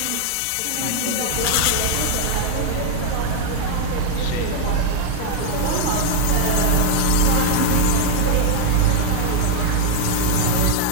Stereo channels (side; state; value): both; different; correlation 0.00